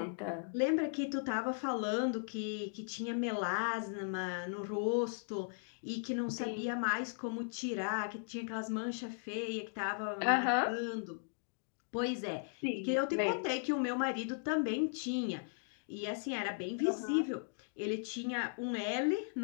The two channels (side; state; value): right; silent; digital silence